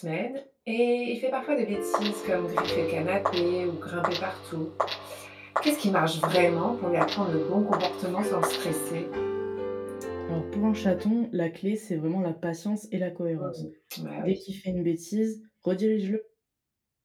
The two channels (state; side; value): identical; both; correlation 1.00